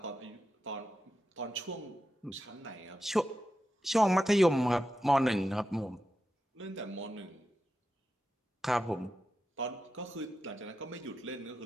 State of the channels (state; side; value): normal; both; correlation 0.90